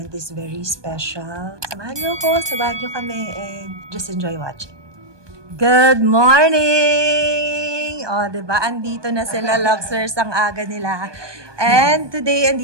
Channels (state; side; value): late; left; 1.2 ms